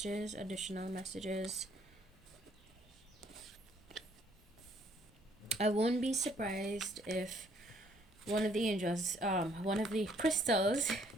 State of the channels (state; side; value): normal; both; correlation 0.64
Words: additional messages. I won't be surprised if one of the angels, one of the crystals,